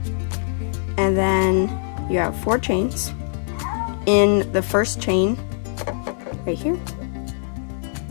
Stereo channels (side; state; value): right; silent; digital silence